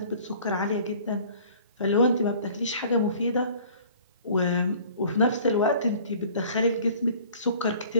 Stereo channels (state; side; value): inverted; both; correlation -0.50